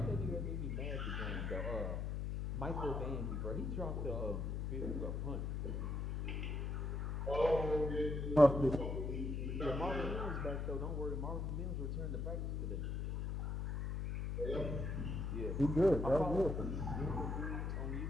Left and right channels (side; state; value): left; noise; hum, 2 dB below the sound